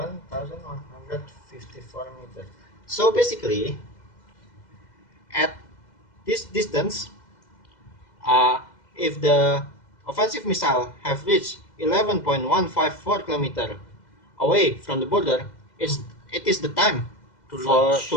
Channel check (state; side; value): late; right; 2.0 ms